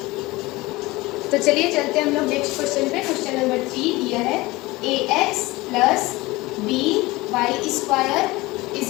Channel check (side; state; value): right; quieter; 20.8 dB